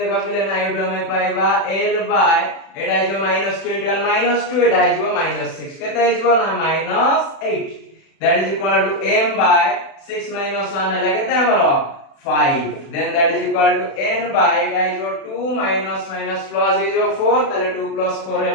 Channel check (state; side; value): late; right; 36 ms